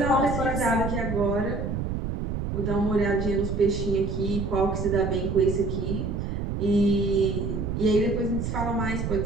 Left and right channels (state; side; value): noise; right; rumble, 3 dB below the sound